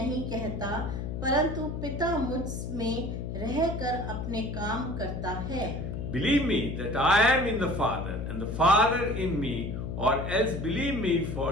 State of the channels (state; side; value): noise; left; hum, 5 dB below the sound